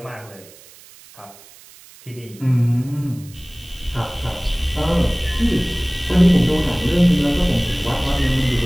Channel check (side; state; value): right; noise; hiss, 23 dB below the sound